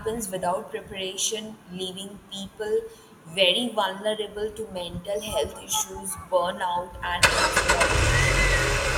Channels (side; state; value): both; identical; correlation 1.00